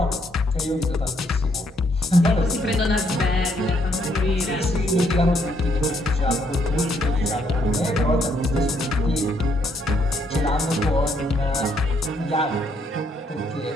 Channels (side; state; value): both; normal; correlation 0.72